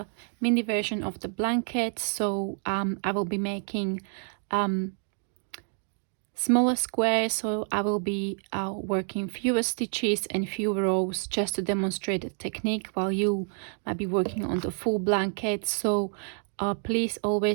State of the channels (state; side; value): silent; left; 56 dB below the other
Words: mini version of the blanket, so I will be making smaller squares, so I will be working fewer stitches and fewer rows just to demonstrate the technique, while you might be working on the full blanket. So please